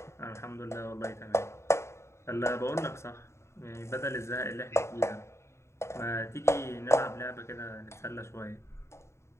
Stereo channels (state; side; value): late; right; 0.13 ms